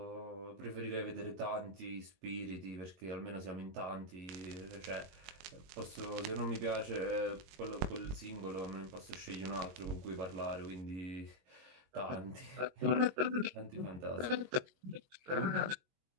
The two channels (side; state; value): left; late; 22 ms